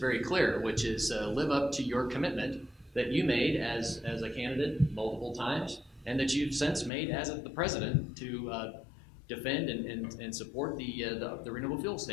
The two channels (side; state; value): right; drops out; at 6.9 s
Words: clear, which is live up to your commitment that you made as a candidate multiple times, and that you've since made as the president to defend and support the renewable fuel